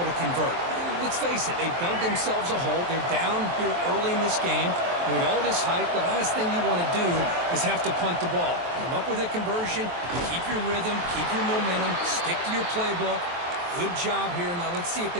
to convert. Let's face it, they dug themselves a hole. They're down here early in this game. And with all this hype, the last thing you want to do is have to punt the ball. Come up with a conversion, keep your rhythm, keep your momentum, stick to your playbook. Good job here. Now let's see if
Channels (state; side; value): late; left; 23 ms